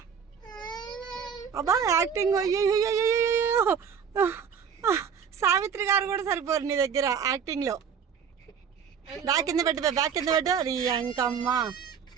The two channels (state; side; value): quieter; left; 7.2 dB